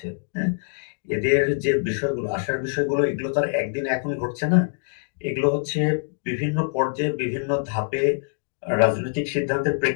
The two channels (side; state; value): right; silent; digital silence